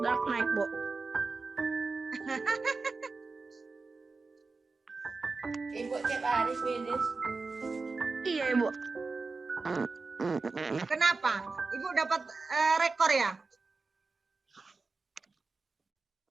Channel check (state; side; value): quieter; left; 4.0 dB